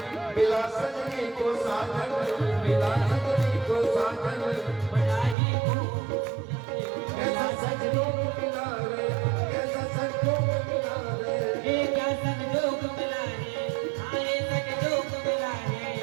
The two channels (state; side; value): drops out; left; at 5.4 s